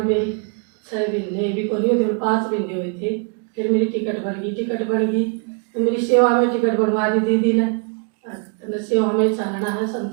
मेरी 6 महीने भी को नहीं 5 महीने हुए थे। फिर मेरी टिकट बन गई तो मेरी सेवा में टिकट बनवा दी दीदी ने। सेवा में चालना है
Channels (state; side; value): quieter; left; 39.6 dB